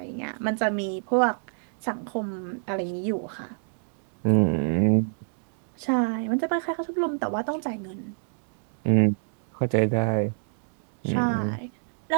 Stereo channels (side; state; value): left; silent; digital silence